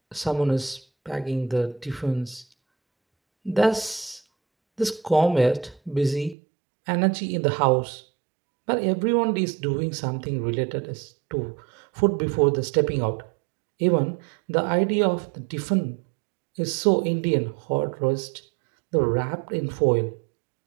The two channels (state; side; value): drops out; left; at 6.4 s